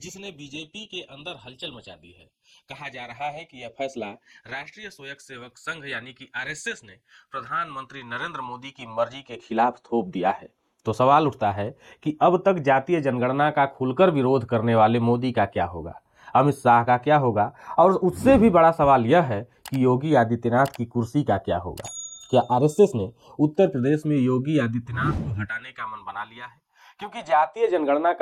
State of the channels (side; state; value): both; identical; correlation 1.00